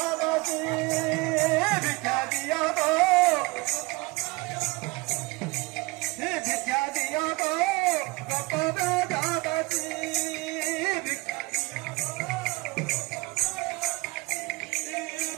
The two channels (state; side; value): quieter; left; 24.9 dB